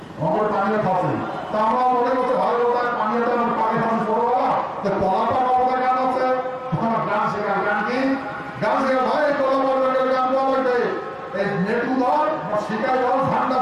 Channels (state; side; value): identical; both; correlation 1.00